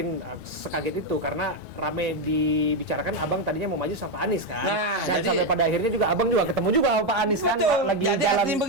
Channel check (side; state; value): both; normal; correlation 0.06